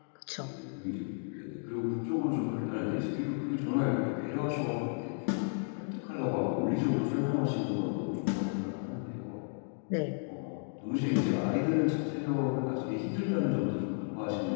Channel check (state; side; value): silent; right; 56 dB below the other